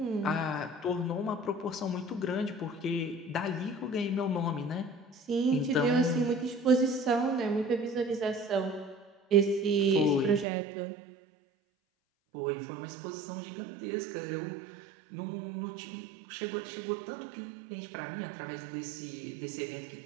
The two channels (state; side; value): drops out; left; at 10.5 s